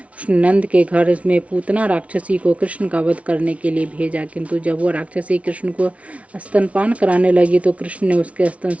उसने नंद के घर में पूतना राक्षसी को कृष्ण का वध करने के लिए भेजा, किंतु जब वह राक्षसी कृष्ण को स्तनपान कराने लगी तो कृष्ण ने उसके स्तन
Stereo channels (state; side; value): late; left; 0.064 ms